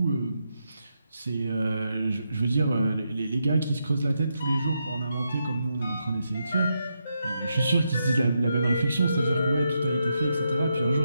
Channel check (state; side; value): inverted; both; correlation -0.83